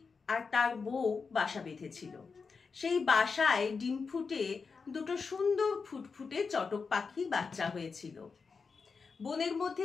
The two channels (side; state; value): right; quieter; 5.0 dB